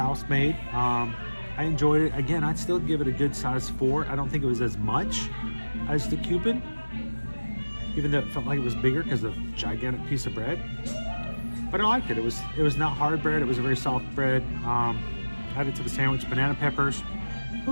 made. I enjoyed it. Again, I'd still give it a good size 4. I don't think it was as much as the Cupid, even though it felt like it was bigger because of the gigantic piece of bread. But I liked it. It was not hard bread. It was a very soft bread. Added to the sandwich, banana peppers. It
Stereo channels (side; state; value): both; inverted; correlation -1.00